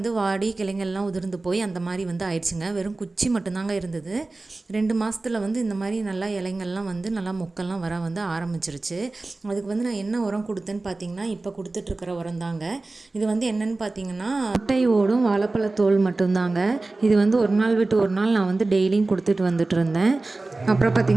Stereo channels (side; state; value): left; quieter; 3.2 dB